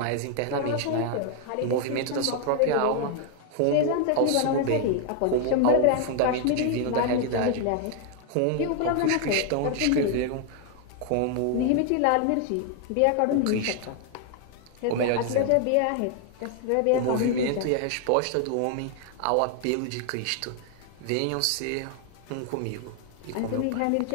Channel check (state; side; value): different; both; correlation 0.00